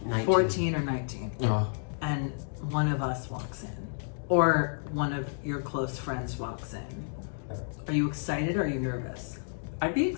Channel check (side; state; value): right; silent; digital silence